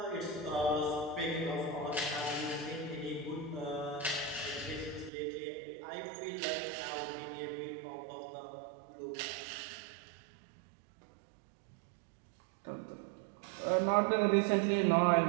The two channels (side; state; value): left; drops out; at 5.1 s